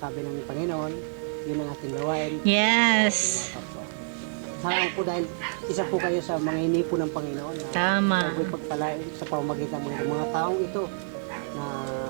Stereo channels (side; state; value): left; silent; digital silence